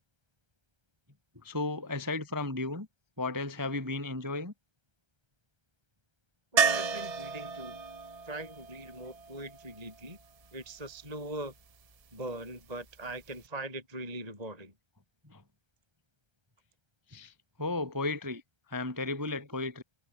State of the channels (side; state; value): left; late; 1.3 ms